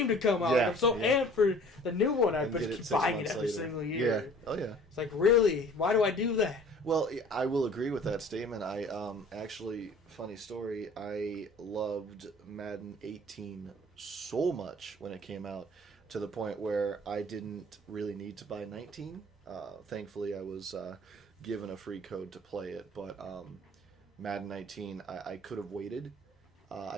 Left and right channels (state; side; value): normal; both; correlation 0.49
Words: to come out. Yeah, I'm so amped for the new one. I just keep buying it every later. single year. Yeah. Oh yeah. It's like, really? Why do I do that? Well, I will agree with that statement. I actually, funny story, I loved Madden 18 so much when it came out to the point where I didn't really need to buy 19. Thankfully, I was given a free code to play it, but Madden 19, I could have waited.